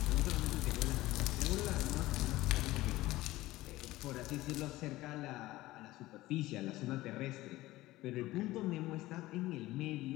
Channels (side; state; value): right; quieter; 17.6 dB